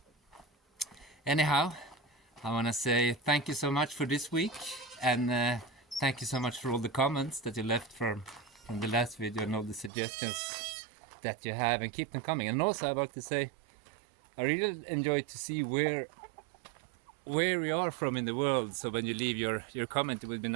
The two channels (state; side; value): drops out; left; at 9.9 s